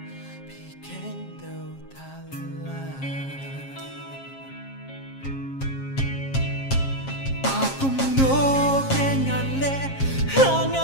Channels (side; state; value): right; late; 7.4 ms